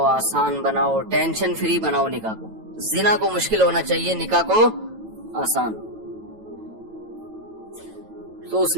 آسان بناؤ، ٹینشن فری بناؤ نکاح کو۔ زنا کو مشکل ہونا چاہیے، نکاح کو آسان۔ تو اس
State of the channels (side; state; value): left; late; 9.1 ms